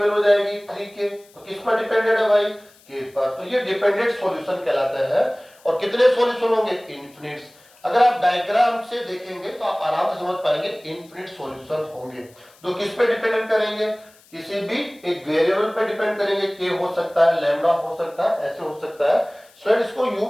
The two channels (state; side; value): noise; left; hiss, 28 dB below the sound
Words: हो जाएगी 3k, तो किस पर डिपेंडेंट है भाई, k पर। तो ये डिपेंडेंट सॉल्यूशन कहलाते हैं। और कितने सॉल्यूशन होंगे, इनफिनिट। अगर आप डायग्राम से देखेंगे तो आप आराम से समझ पाएंगे इनफिनिट सॉल्यूशन होंगे। तो किस पे डिपेंडेंट करेंगे, किसी भी एक वेरिएबल पे डिपेंड करेंगे, k हो सकता है, लैम्डा हो सकता है, ऐसे हो सकता है। स्टूडेंट इसको यूं